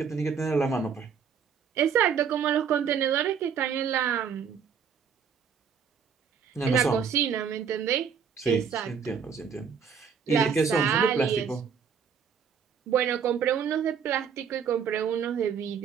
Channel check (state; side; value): quieter; left; 6.9 dB